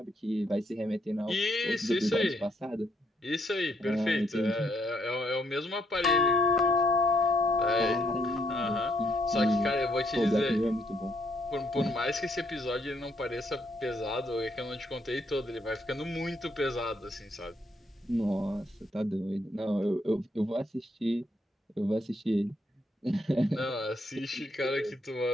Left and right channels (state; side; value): normal; both; correlation 0.72